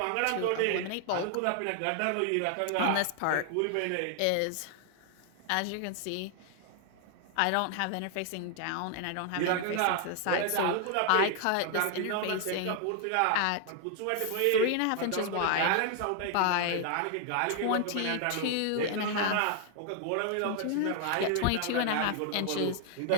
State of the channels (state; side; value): different; both; correlation 0.00